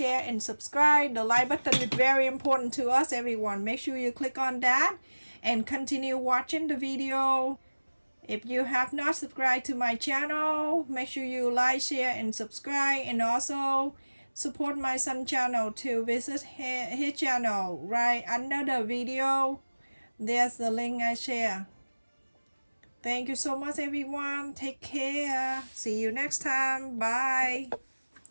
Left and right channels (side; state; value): both; inverted; correlation -1.00